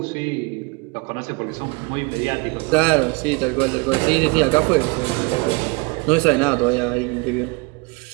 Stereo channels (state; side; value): quieter; left; 27.5 dB